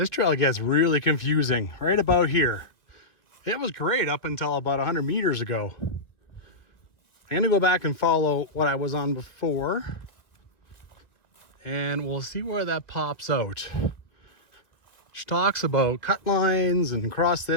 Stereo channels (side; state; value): right; late; 1.7 ms